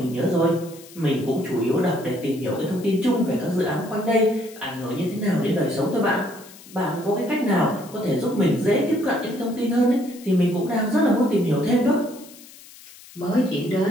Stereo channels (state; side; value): noise; left; hiss, 20 dB below the sound